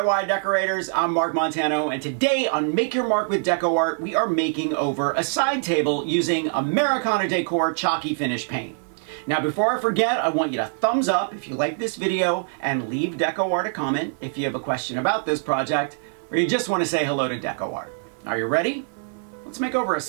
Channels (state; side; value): silent; left; digital silence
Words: decorators, I'm Mark Montano, and today on Make Your Mark with DecoArt, we are making over a side table using Americana Decor chalky finish paint. Now before I forget, I want you to thumbs up if you like this video and leave DecoArt a comment if you have a question about this project or you just want to say hello to DecoArt. Are you ready? Let's make over a